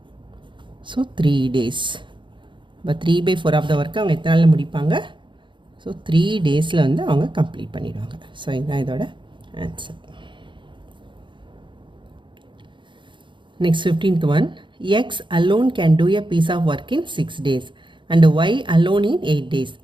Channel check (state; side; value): late; left; 0.23 ms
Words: So 3 days. இப்போ 3/4 ஆஃப் த ஒர்க்கை அவங்க எத்தனை நாளில் முடிப்பாங்க? ஸோ 3 daysல வந்து அவங்க கம்ப்ளீட் பண்ணிடுவாங்க. ஸோ இதுதான் இதோட answer. Next 15th one. X alone can do a piece of work in 6 days and Y alone in 8 days.